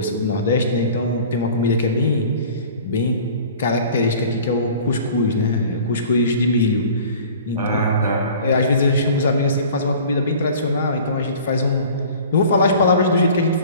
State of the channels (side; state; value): both; inverted; correlation -0.45